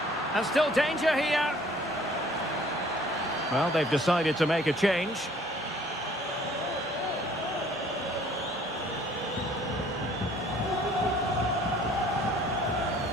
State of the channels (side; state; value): both; normal; correlation 0.56